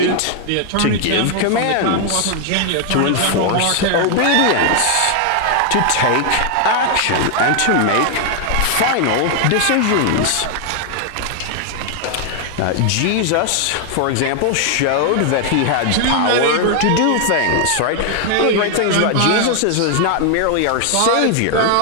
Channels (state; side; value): different; both; correlation 0.00